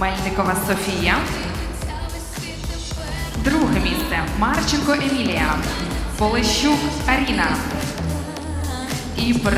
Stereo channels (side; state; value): both; identical; correlation 1.00